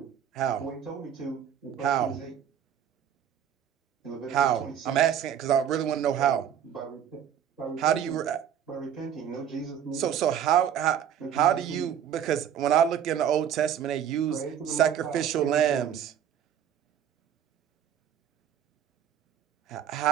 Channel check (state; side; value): quieter; left; 9.3 dB